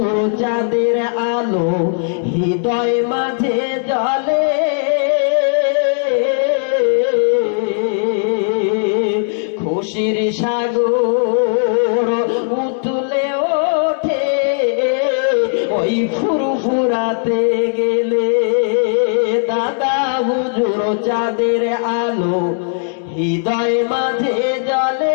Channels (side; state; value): right; silent; digital silence